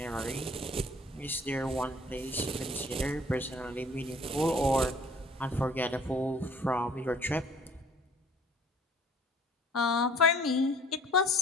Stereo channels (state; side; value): normal; both; correlation 0.53